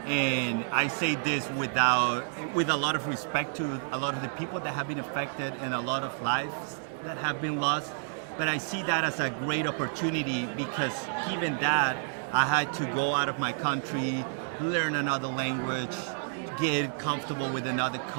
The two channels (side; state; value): left; silent; digital silence